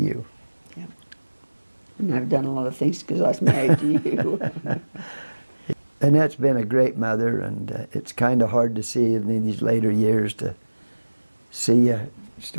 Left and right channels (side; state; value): both; inverted; correlation -1.00